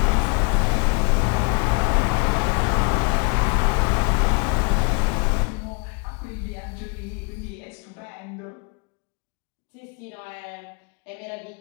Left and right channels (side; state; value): right; quieter; 33.2 dB